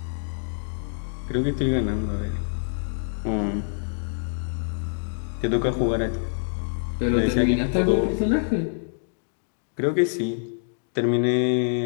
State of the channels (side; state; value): right; silent; digital silence